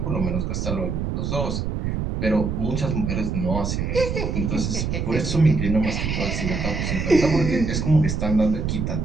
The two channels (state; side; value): noise; right; rumble, 1 dB below the sound